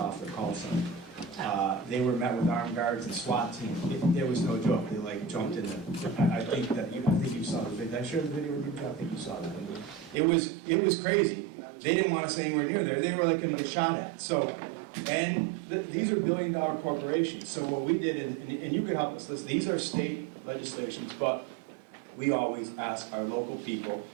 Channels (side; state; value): left; drops out; at 10.2 s